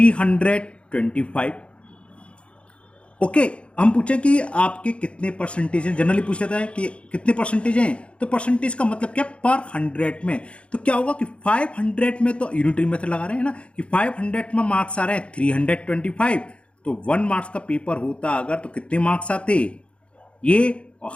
ओके, हम पूछें कि आपके कितने परसेंटेज हैं। जनरली पूछ लेता है कि कितने परसेंटेज हैं, तो परसेंटेज का मतलब क्या, पर 100 में। तो क्या होगा कि 500 में तो यूनिटरी मेथड लगा रहे हैं ना, कि 500 में मार्क्स आ रहे हैं 325, तो 1 मार्क्स का पेपर होता अगर तो कितने मार्क्स आते ये, और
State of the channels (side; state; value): right; late; 0.059 ms